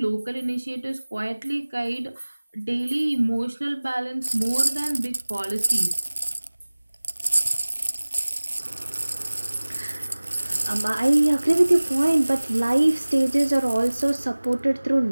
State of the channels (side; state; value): both; inverted; correlation -1.00